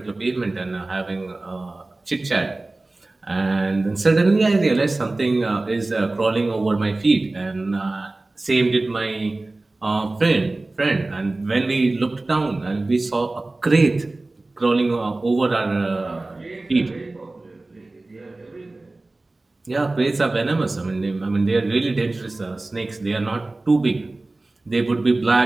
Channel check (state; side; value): quieter; left; 3.0 dB